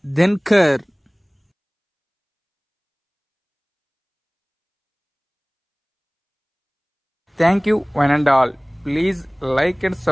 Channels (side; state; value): both; identical; correlation 1.00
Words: Dhankhar. Thank you one and all. Please like and